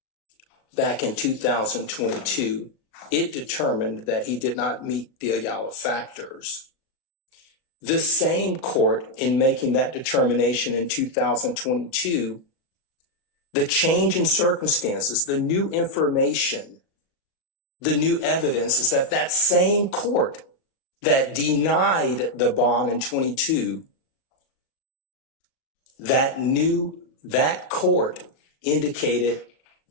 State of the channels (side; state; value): right; late; 38 ms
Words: back in 2022, it determined that he did not meet the Ayala factors. This same court, in making that determination in 2022, the change in circumstances, the new information, the new evidence is that that same court that denied the bond in 22, that court indicated